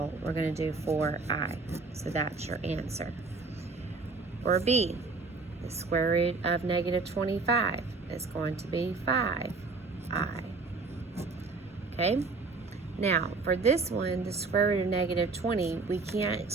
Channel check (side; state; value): left; quieter; 4.1 dB